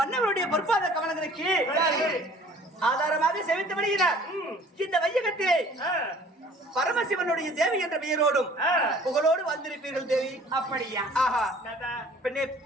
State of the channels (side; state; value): both; normal; correlation 0.51